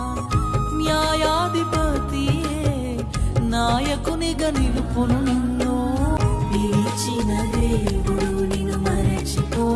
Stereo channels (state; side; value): identical; both; correlation 1.00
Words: న్యాయాధిపతియే నాయకునిగా నిలుపును నిన్ను పిలిచిన దేవుడు నిన్ను